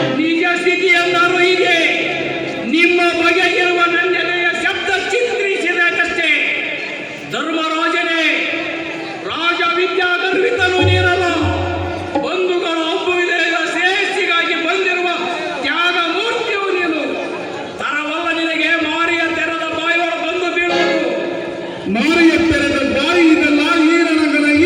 ನಿಜ ಸ್ಥಿತಿ ಎಂದರು ಹೀಗೆ. ನಿಮ್ಮ ಬಗೆಗಿರುವ ನನ್ನೆಲೆಯ ಶಬ್ದ ಚಿತ್ರಿಸಿದಷ್ಟೇ. ಧರ್ಮರಾಜನೇ, ರಾಜ ವಿದ್ಯಾ ಗರ್ವಿತನು ನೀರಲ್ಲ. ಬಂಧುಗಳ ಒಬ್ಬುವಿದೆಯ ಶ್ರೇಷ್ಠಿಗಾಗಿ ಬಂದಿರುವ ತ್ಯಾಗ ಮೂರ್ತಿಯು ನೀನು. ತರವಲ್ಲ ನಿನಗೆ ಮಾರಿಯ ತೆರೆದ ಬಾಯಿಯೊಳ ಬಂದು ಬೀಳುವುದು. ಮಾರಿಯ ತೆರೆದ ಬಾಯಿ ಇದೆಲ್ಲ ಈ ರಣಗನ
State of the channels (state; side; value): identical; both; correlation 1.00